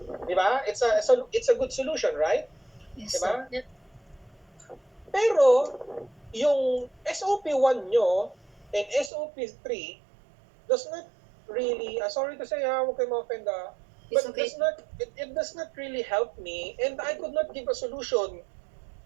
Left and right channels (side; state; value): left; drops out; at 9.1 s